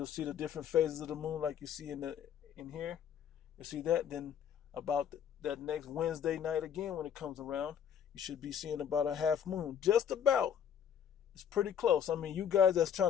see the different phases of the moon like you see in here. You see that? Then about that next Wednesday night again when it comes around, you should be seeing about a half moon. Just about. It's pretty close. I mean, you guys that's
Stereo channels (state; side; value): quieter; right; 8.6 dB